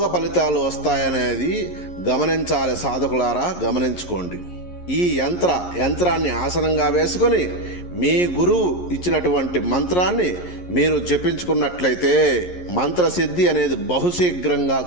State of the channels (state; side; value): late; right; 11 ms